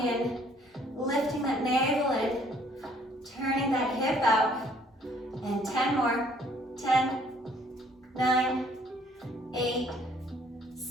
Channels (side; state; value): both; normal; correlation 0.61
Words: lifting that navel in, turning that hip out. And 10 more. 10, 9, 8,